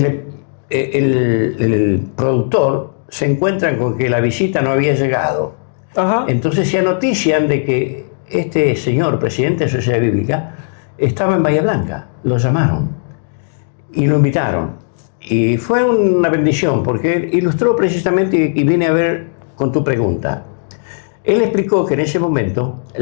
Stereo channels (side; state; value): right; silent; digital silence